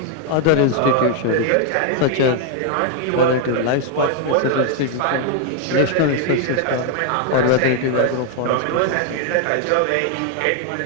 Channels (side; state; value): both; different; correlation 0.00